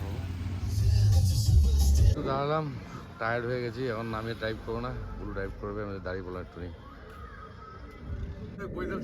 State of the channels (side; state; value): both; identical; correlation 1.00